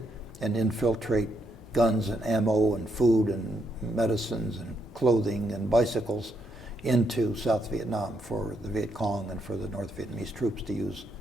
and infiltrate guns and ammo and food and medicines and clothing and bicycles into South Vietnam for the Viet Cong and for the North Vietnamese troops to use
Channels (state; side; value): normal; both; correlation 0.77